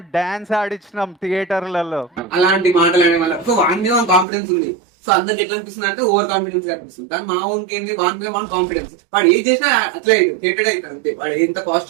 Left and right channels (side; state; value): left; drops out; at 4.2 s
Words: డాన్స్ ఆడించినాం థియేటర్లలో. అలాంటి మాటలు అనే వల్ల సో వాని మీద కాన్ఫిడెన్స్ ఉంది. సో అందరికి ఎట్లా అనిపిస్తుంది అంటే ఓవర్ కాన్ఫిడెన్స్ అనిపిస్తుంది. కానీ మా ఓన్కి ఏంది, వాని మీద వాన్ కాన్ఫిడెన్స్, వాడు ఏం చేసినా అట్లా అవుతుంది, హేటెడ్ అవుతుంది అంతే. వాడు ఎంత